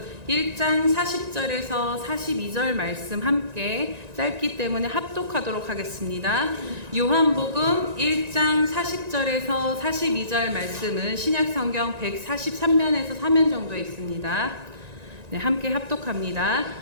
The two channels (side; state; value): left; late; 1.9 ms